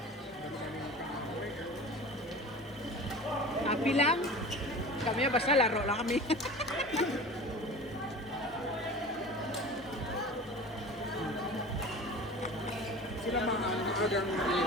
Happy lang. Kami, basta laro lang kami. Sila mga agang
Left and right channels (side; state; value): both; normal; correlation 0.36